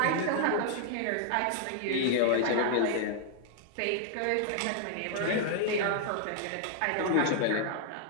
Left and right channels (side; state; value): both; different; correlation 0.00